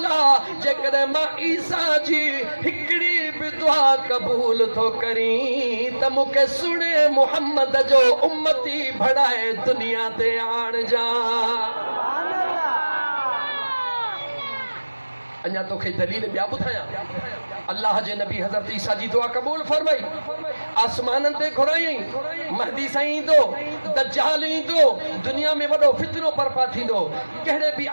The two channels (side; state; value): both; inverted; correlation -1.00